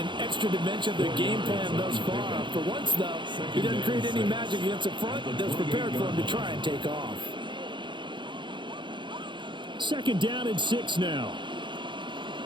extra dimension of their game plan thus far. For once, though, he doesn't create any magic against the front that's prepared for him to try and take off. 2nd down and 6 now.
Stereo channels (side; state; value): left; late; 0.23 ms